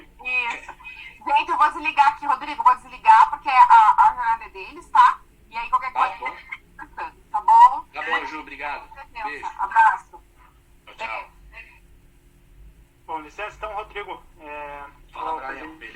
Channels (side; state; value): both; identical; correlation 1.00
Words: Isso. Gente, eu vou desligar aqui, Rodrigo. Vou desligar porque a jornada é deles, tá? E aí qualquer coisa... Tá bom? Tá bom, Ju. Obrigado. Beijo. Abraço. Tchau. Bom, licença, então, Rodrigo. Fala, Brian.